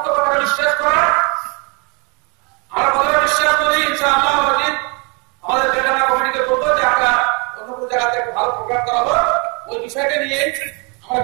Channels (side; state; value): left; quieter; 31.9 dB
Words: কথা বিশ্বাস করা, আমরা কথা বিশ্বাস করি ইনশাআল্লাহ। আমাদের বেদানা কমিটিকে বলবো যে আমরা অন্য কোনো জায়গাতে একটা ভালো প্রোগ্রাম করাবো, ওই বিষয়টা নিয়ে আমরা